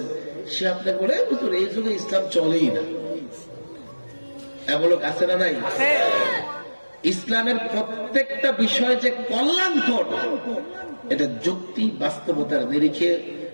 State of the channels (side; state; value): both; inverted; correlation -1.00